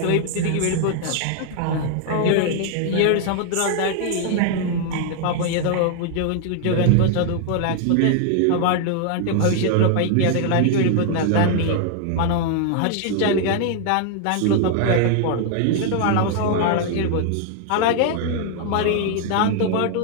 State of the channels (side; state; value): both; different; correlation 0.00